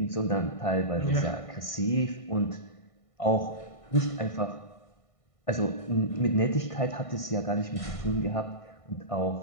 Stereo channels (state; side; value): late; right; 1.6 ms